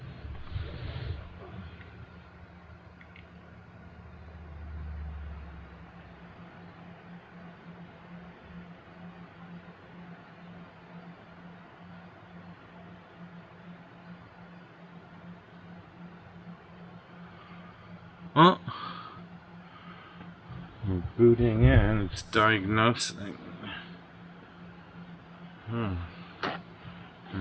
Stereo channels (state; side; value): identical; both; correlation 1.00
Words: Oh, we're booting in, it's diagnosing. There